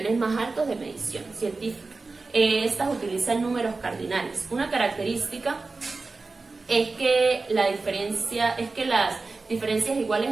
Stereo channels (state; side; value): quieter; left; 3.8 dB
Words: más altos de medición científica. Estas utilizan números cardinales. Una característica es que las diferencias iguales